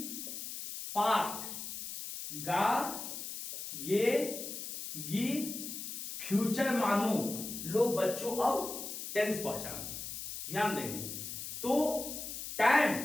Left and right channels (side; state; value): left; noise; hiss, 7 dB below the sound